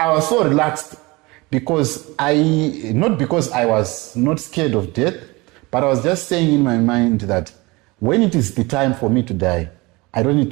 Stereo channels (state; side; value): quieter; left; 23.6 dB